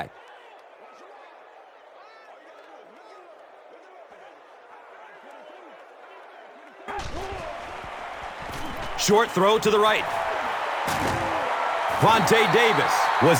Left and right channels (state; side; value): identical; both; correlation 1.00